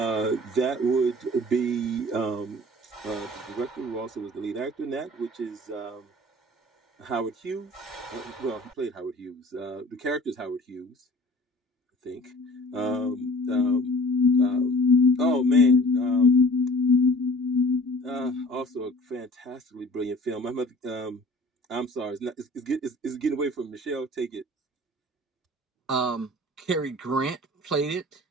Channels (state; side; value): normal; both; correlation 0.46